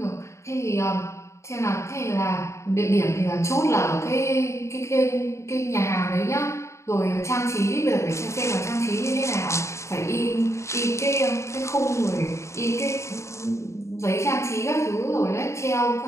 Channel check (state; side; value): late; right; 0.14 ms